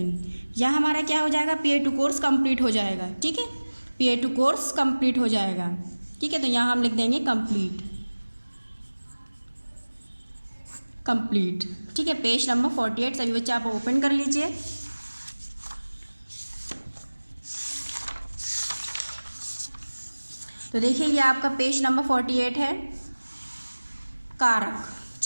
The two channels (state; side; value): inverted; both; correlation -1.00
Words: यह हमारा क्या हो जाएगा? PA2 कोर्स कंप्लीट हो जाएगा, ठीक है। PA2 कोर्स कंप्लीट हो जाएगा, ठीक है। तो यहाँ हम लिख देंगे कंप्लीट, कंप्लीट, ठीक है। पेज नंबर 48 सभी बच्चे आप ओपन कर लीजिए। तो देखिए ये आपका पेज नंबर 48 है। कारक,